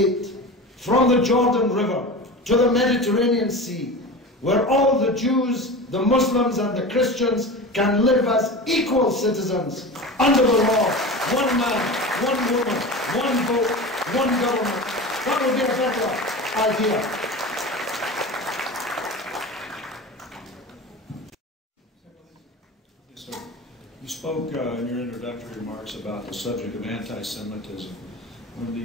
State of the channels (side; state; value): both; normal; correlation 0.30